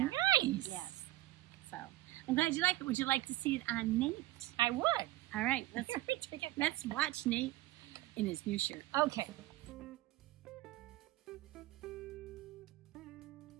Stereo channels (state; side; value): quieter; left; 17.2 dB